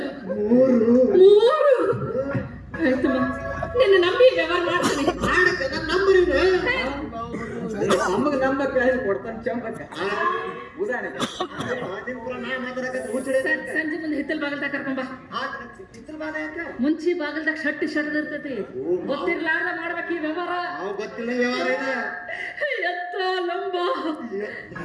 3 ಆಯ್ತಮ್ಮ ನಿನ್ನ ನಂಬಿ ವ್ಯವಹಾರ ಮಾಡ್ತೀನಿ ನಮಗೆ ನಂಬಕ್ಕೆ ಕೊಡ್ತಾನೆ ಚಂಬಕ್ಕ ಉದಾಹರಣೆಗೆ ಸಂಜೆ ಮುಂದೆ ಹಿತ್ತಲ್ ಬಾಗಲ್ದಾಗ ಕರ್ಕೊಂಬ ಮುಂಚಿ ಬಾಗಲ್ದಾಗ ಶಟ್ಟಿ ಶರ್ಟ್ ಇರ್ತೈತಿ ಗೊತ್ತಿರ್ಲಾರ್ದ ಮಾಡ್ಬೇಕು ಈ ವ್ಯವಹಾರ ಎತ್ತ ಲಂಬ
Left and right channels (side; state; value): both; identical; correlation 1.00